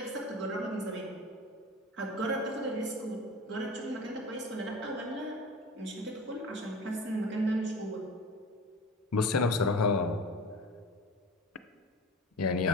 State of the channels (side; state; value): both; normal; correlation 0.35